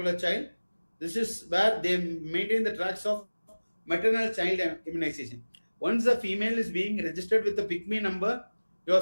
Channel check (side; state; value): both; inverted; correlation -1.00